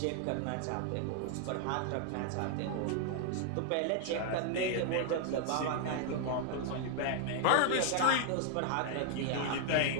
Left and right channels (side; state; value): both; different; correlation 0.00